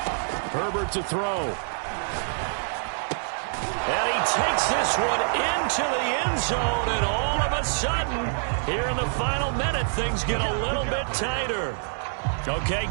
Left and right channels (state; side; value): silent; left; digital silence